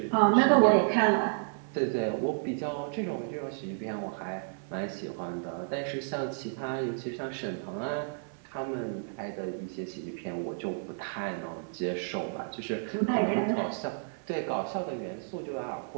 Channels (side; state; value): left; silent; digital silence